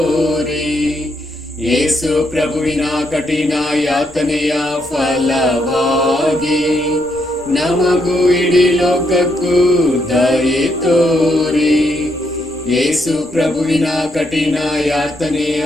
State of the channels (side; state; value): both; normal; correlation 0.77